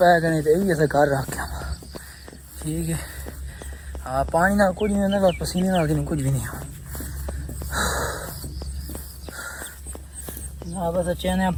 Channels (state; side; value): identical; both; correlation 1.00